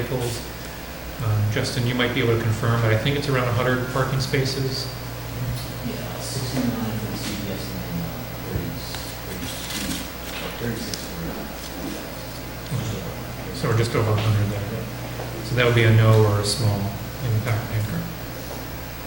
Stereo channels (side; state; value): left; noise; rumble, 24 dB below the sound